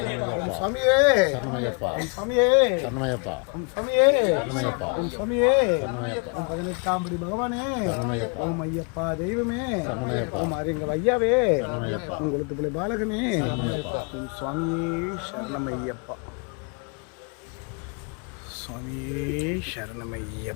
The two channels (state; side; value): quieter; right; 36.7 dB